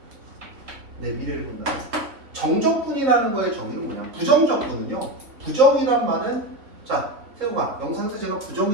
내 미래를 본다면. 정적분이라는 거의 정의는 뭐냐? 부정적분은요. 부정이란 말은 자, 세우가 영상에서 제가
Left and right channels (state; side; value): late; left; 3.5 ms